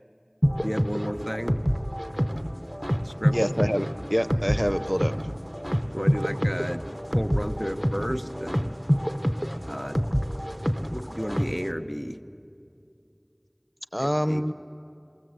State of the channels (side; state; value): both; identical; correlation 1.00